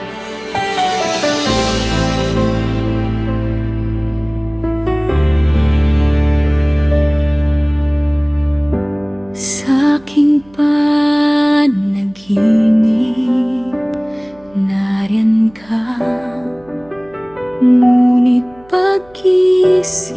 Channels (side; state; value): right; noise; hum, 28 dB below the sound